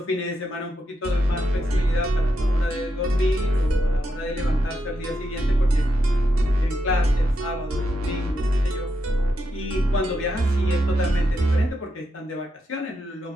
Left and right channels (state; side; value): normal; both; correlation 0.83